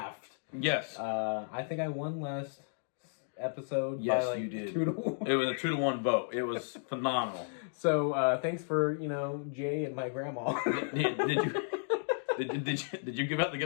Yes. I think I won last episode. Yes, by like you did. 2-1. It was a 2-1 vote. It was phenomenal. So thanks for Jay and my grandma. Did you give out the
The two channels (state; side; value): silent; right; digital silence